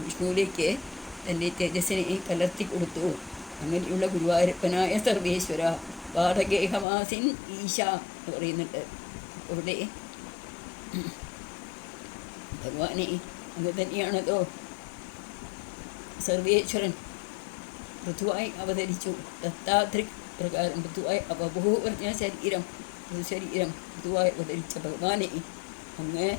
വിഷ്ണുവിലേക്ക് തൻ്റെ തേജസ്സിനെ കലർത്തി കൊടുത്തു. അങ്ങനെയുള്ള ഗുരുവായൂരപ്പനായ സർവേശ്വര വാതഗേഹവാസിൻ ഈശ എന്ന് പറയുന്നുണ്ട്. അവിടെ ഭഗവാനെ അങ്ങ് തന്നെയാണതോ സർവേശ്വരൻ ഋതുവായി അവതരിച്ചു. ദത്താദൃക് പ്രകാരം ഋതുവായി ബഹു പറഞ്ഞ ശരീരം, ഋതുശരീരം ഋതുവായി അവതരിച്ച ഭഗവാനെ അങ്ങ്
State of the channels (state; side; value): drops out; right; at 6.9 s